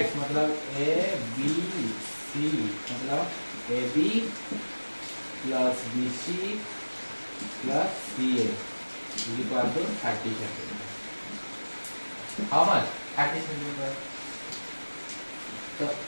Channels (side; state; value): both; inverted; correlation -1.00